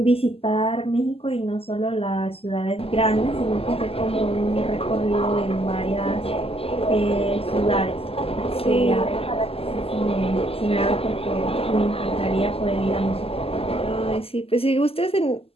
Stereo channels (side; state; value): right; late; 0.28 ms